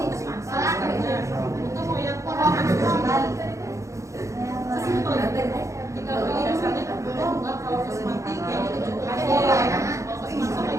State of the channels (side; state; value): left; late; 0.15 ms